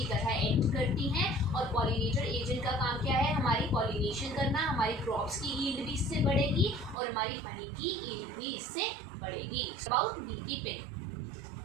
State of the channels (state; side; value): drops out; left; at 7.0 s